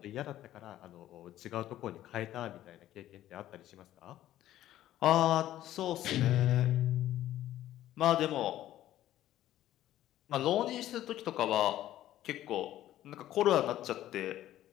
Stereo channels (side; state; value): right; quieter; 13.3 dB